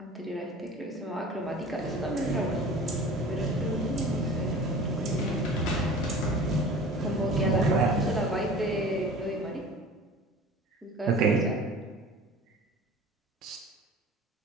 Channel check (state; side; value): normal; both; correlation 0.41